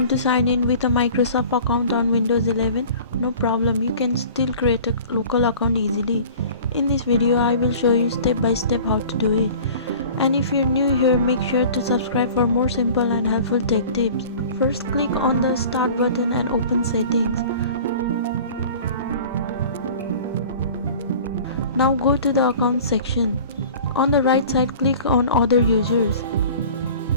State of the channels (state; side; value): inverted; both; correlation -0.43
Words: to sign in with a Microsoft account on Windows 11? No problem, you can still create a local account easily. In this video, I will show you step by step how to do it. And if you're new here, make sure to subscribe for more simple and helpful tech tips. First, click on the Start button and open Settings. Now go to the Account section. On the right side, click on Other Users.